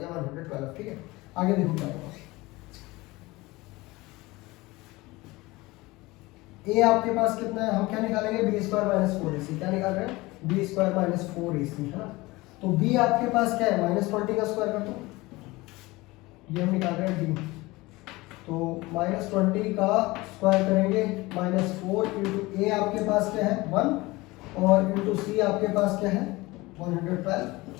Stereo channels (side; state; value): right; quieter; 21.3 dB